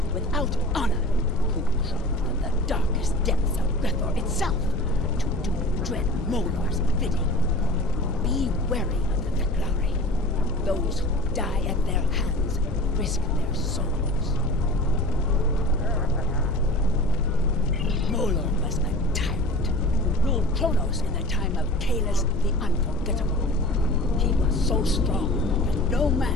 without honor who crawl from the darkest depths of Grethor itself to do dread Molar's bidding. Be wary of the Fek'ihi. Those who die at their hands risk their souls. Molor was a tyrant who ruled Kronos in the time of Kalis the Unforgettable. He was so strong that no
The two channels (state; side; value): quieter; right; 4.2 dB